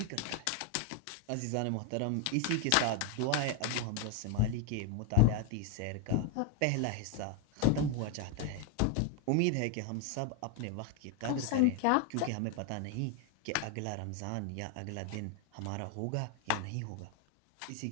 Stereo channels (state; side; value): different; both; correlation 0.01